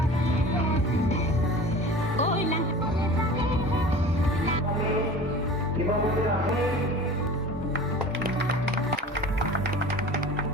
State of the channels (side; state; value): both; normal; correlation 0.39